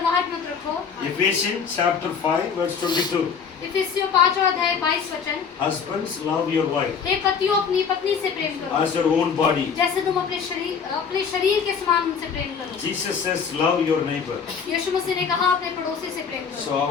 मत रखो। Ephesians chapter 5 verse 22. इफिसियों 5वां अध्याय 22 वचन, Husbands, love your wife हे पतियों अपनी पत्नी से प्रेम करो as your own body. जैसे तुम अपने शरीर के समान उनसे प्रेम करो। Jesus says, love your neighbor. यीशु मसीह ने कहा अपने पड़ोसी से प्रेम करो। So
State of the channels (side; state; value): right; quieter; 6.4 dB